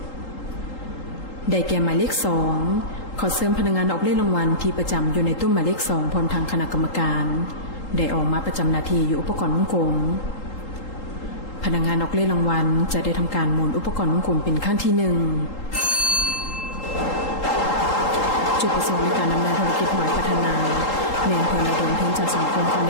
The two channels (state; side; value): late; right; 3.8 ms